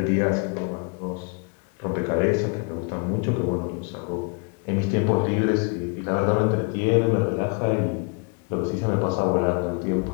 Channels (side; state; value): right; quieter; 35.7 dB